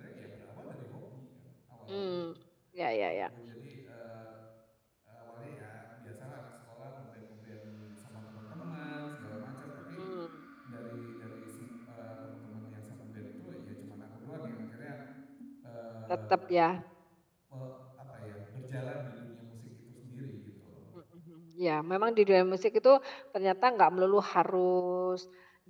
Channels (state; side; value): identical; both; correlation 1.00